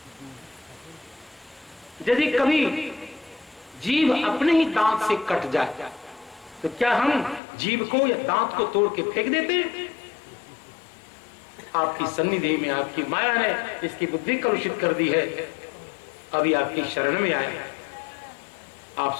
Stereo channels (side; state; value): right; drops out; at 7.4 s